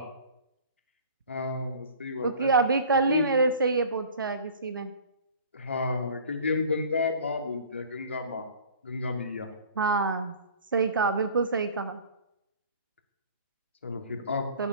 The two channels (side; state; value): both; inverted; correlation -0.45